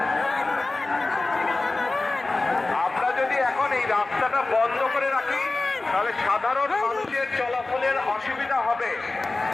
আমরা যদি এখন এই রাস্তাটা বন্ধ করে রাখি তাহলে সাধারণ মানুষের চলাচলের অসুবিধা হবে।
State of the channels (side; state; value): right; quieter; 3.2 dB